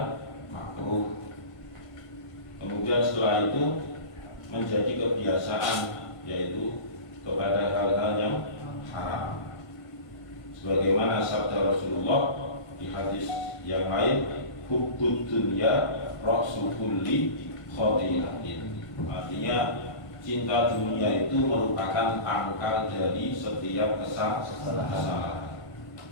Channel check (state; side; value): late; right; 1.6 ms